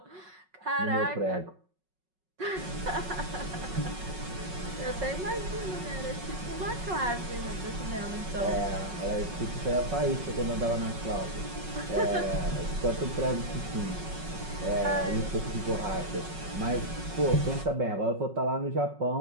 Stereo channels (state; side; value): late; left; 5.4 ms